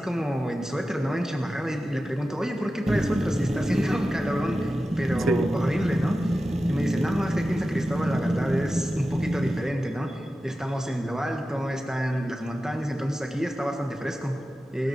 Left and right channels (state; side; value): normal; both; correlation 0.93